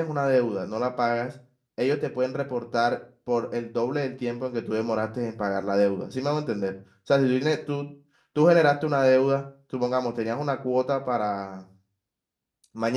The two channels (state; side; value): identical; both; correlation 1.00